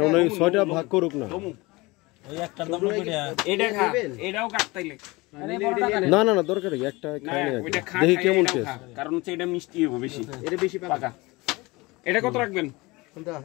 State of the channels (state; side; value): quieter; right; 23.1 dB